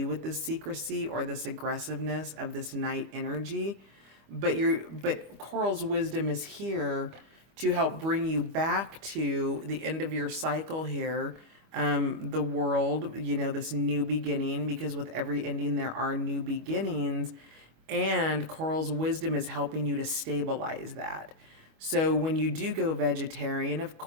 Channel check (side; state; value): left; late; 25 ms